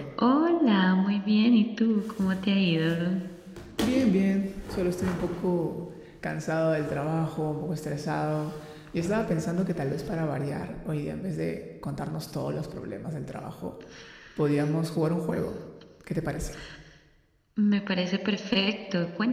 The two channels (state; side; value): identical; both; correlation 1.00